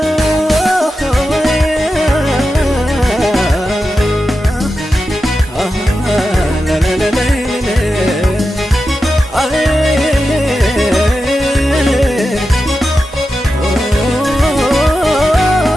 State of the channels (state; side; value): normal; both; correlation 0.91